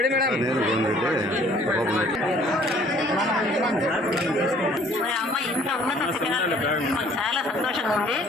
మేడం. మరి అమ్మాయి ఇంత ఉన్నత శిఖరాలు మాకు చాలా సంతోషంగా ఉంది.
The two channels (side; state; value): both; normal; correlation 0.56